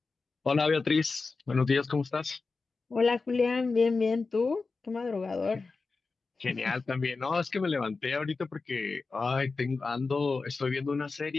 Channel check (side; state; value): right; quieter; 4.1 dB